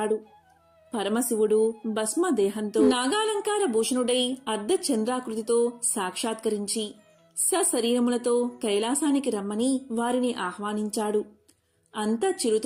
పరమశివుడు భస్మదేహంతో నాగాలంకార భూషణుడై అర్ధచంద్రాకృతితో సాక్షాత్కరించి సశరీరములతో కైలాసానికి రమ్మని వారిని ఆహ్వానించాడు. అంతా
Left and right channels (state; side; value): identical; both; correlation 1.00